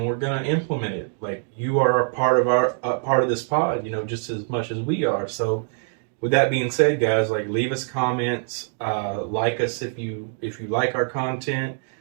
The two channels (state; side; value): silent; left; 56 dB below the other